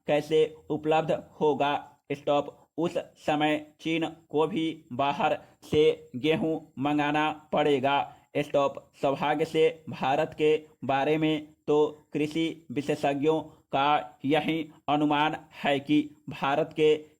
कैसे उपलब्ध होगा? स्टॉप। उस समय चीन को भी बाहर से गेहूं मंगाना पड़ेगा। स्टॉप। सौभाग्य से भारत के बारे में तो कृषि विशेषज्ञों का यही अनुमान है कि भारत के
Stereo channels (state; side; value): identical; both; correlation 1.00